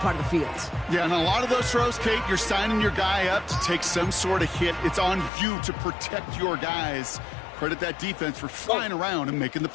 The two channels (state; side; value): drops out; right; at 5.3 s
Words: of the field. Yeah, and a lot of those throws, Kate, you're signing your guy up to take some sort of hit. It's on you to protect your guys. Credit that defense for flying around and making the